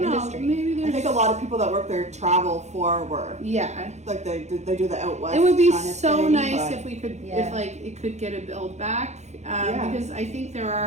know. industry. Maybe there's. I think a lot of people that work there travel for work. Yeah, like they do the out west. It would be kind of so thing, nice if we could, if like it could get a build back, because I think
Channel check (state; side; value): late; left; 0.33 ms